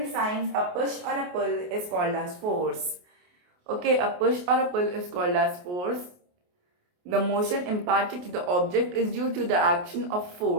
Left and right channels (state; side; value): late; left; 28 ms